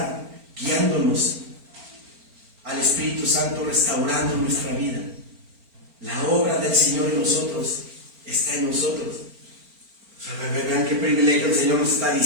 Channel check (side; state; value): left; late; 4.4 ms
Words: al Espíritu Santo restaurando nuestra vida. La obra del Señor en nosotros está en nosotros. O sea, vean qué privilegio el Señor nos está